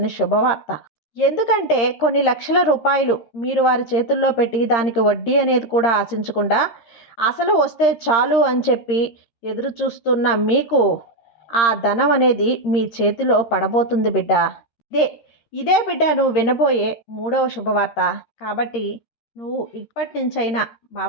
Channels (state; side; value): late; right; 13 ms